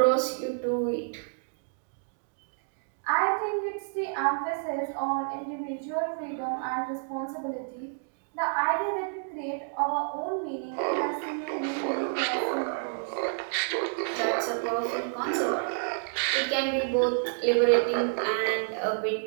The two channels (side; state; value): left; silent; digital silence